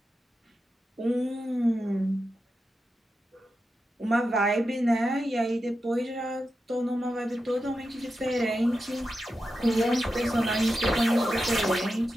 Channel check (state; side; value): normal; both; correlation 0.90